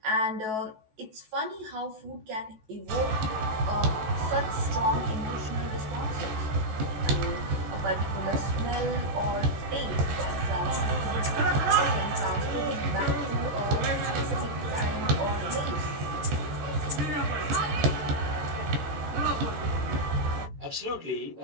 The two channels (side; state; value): left; late; 14 ms